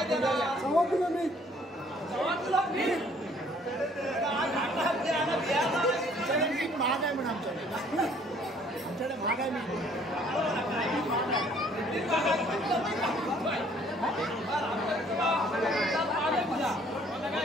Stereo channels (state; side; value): normal; both; correlation 0.60